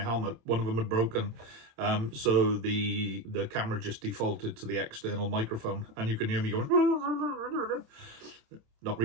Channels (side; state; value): left; late; 26 ms